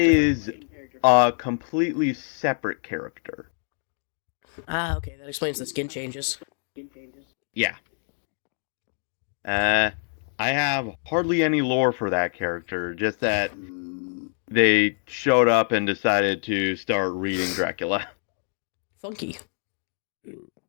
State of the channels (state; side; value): silent; right; 61 dB below the other